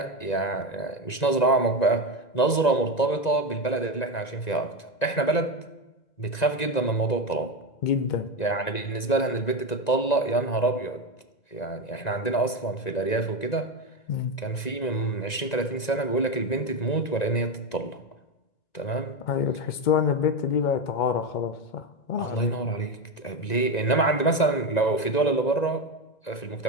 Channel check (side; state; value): right; late; 1.9 ms